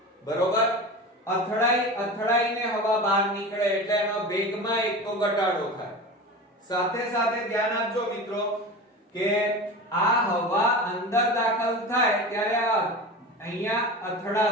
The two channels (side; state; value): both; normal; correlation 0.30